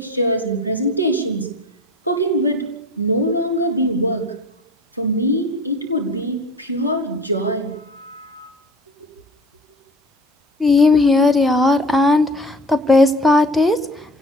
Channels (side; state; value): both; normal; correlation 0.41